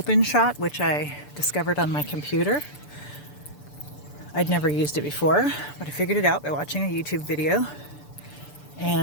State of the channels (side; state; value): right; late; 6.9 ms